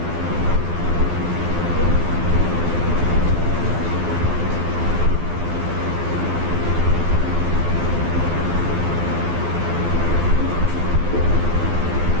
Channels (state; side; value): late; left; 12 ms